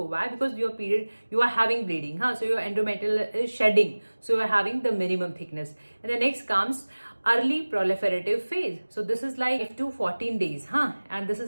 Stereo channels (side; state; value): both; inverted; correlation -1.00